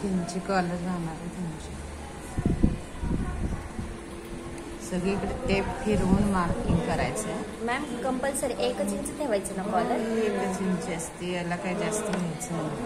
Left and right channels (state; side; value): identical; both; correlation 1.00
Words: इंची कॉलर जाणार आहे तुमची. सगळीकडे टेप फिरवून मार्किंग करायचं आहे. मॅम कंपल्सरी 1 इंच ठेवायचं ना कॉलर? 1 इंच असते, याला काही जास्त घ्यायचं